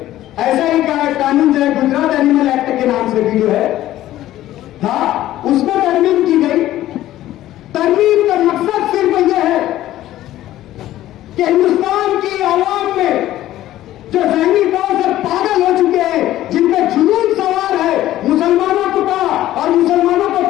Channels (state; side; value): quieter; right; 14.1 dB